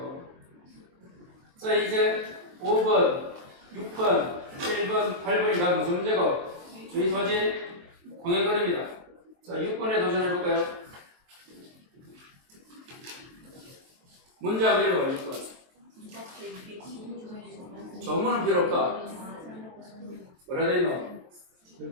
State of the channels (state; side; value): late; left; 23 ms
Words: 자 이제 5번, 6번, 7번, 8번이 다 무슨 문제고? 주의 소지 공연거리입니다. 자 6번에 도전해볼까요? 문제 한번 읽어봐 6번. 조문은 필요 없다. 뭐라 돼있노?